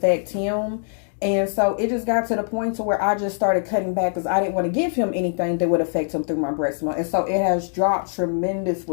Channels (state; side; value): silent; right; digital silence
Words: him. And so it just got to the point to where I just started cutting back because I didn't want to give him anything that would affect him through my breast milk. And so it has dropped